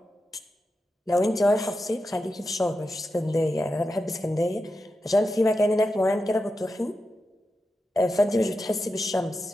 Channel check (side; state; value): both; normal; correlation 0.89